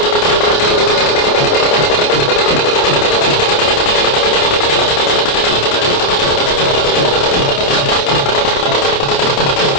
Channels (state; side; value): late; right; 28 ms